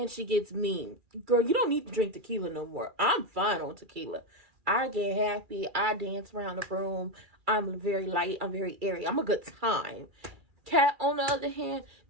she gets mean. Girl, you don't need to drink tequila no more. I'm fine on tequila. I get happy. I dance around the room. I'm very light. I'm very airy. I'm a good time. Cat, on the other hand,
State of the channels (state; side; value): late; left; 2.4 ms